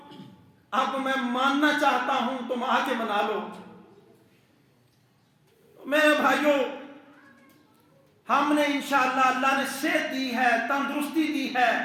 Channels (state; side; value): identical; both; correlation 1.00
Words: اب میں ماننا چاہتا ہوں، تم آ کے منا لو۔ میرے بھائیوں، ہم نے انشاءاللہ، اللہ نے صحت دی ہے، تندرستی دی ہے،